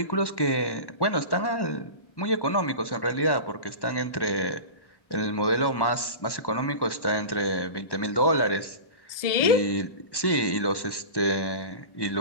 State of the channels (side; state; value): right; late; 1.1 ms